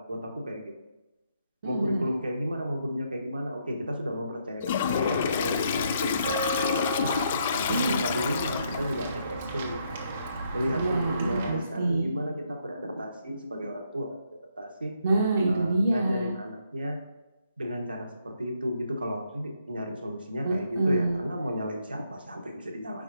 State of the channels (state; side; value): inverted; both; correlation -0.74